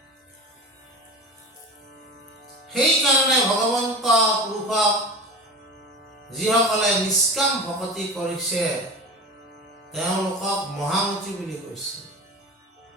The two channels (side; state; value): both; normal; correlation 0.32